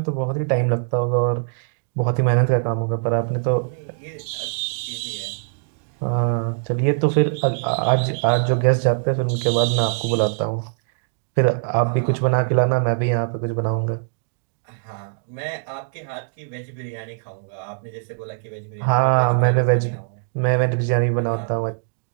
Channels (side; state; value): left; silent; digital silence